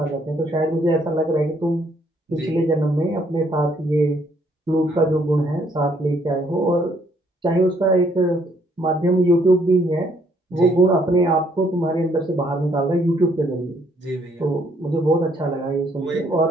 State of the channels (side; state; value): both; normal; correlation 0.68